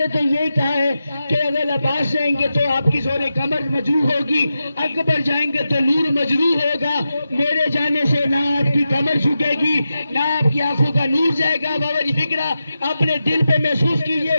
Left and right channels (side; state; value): both; inverted; correlation -0.90